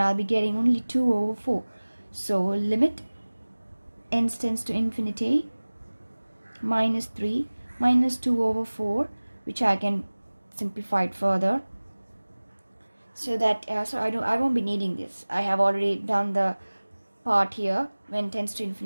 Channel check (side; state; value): both; inverted; correlation -1.00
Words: be getting only 2 over 4. So limit n tends to infinity, minus 3 minus 2 over 4, which I can simplify it further, so that I won't be needing this. I have already done the part here. When tends to